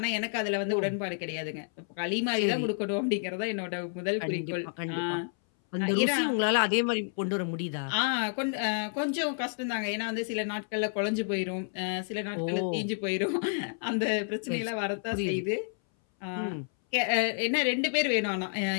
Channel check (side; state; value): right; silent; 58 dB below the other